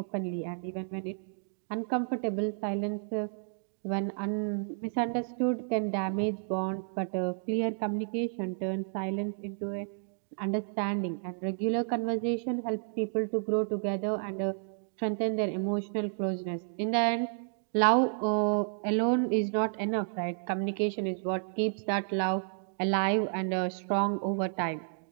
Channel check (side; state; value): left; silent; digital silence